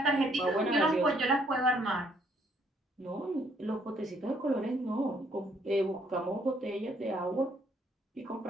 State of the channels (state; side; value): normal; both; correlation 0.67